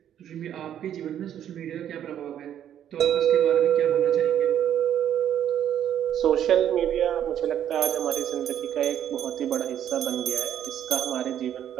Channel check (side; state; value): left; quieter; 10.2 dB